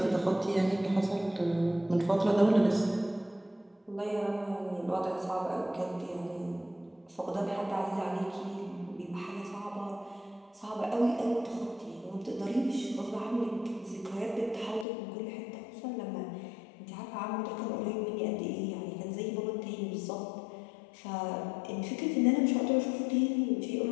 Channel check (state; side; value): drops out; right; at 14.9 s